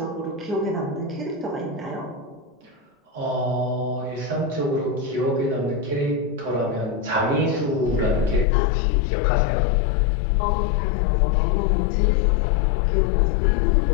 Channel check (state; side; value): drops out; right; at 8.5 s